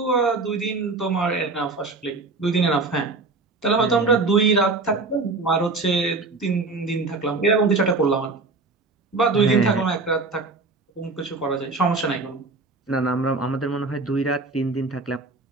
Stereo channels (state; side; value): quieter; left; 3.7 dB